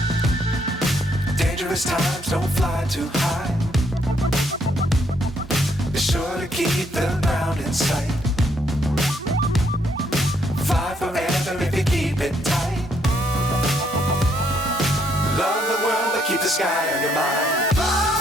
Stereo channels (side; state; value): both; normal; correlation 0.72